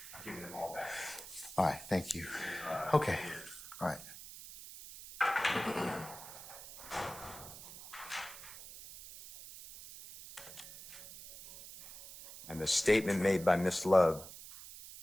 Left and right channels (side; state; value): right; noise; hiss, 14 dB below the sound